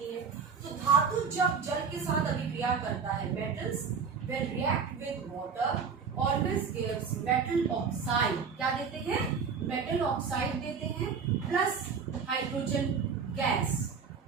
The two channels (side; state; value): left; quieter; 6.0 dB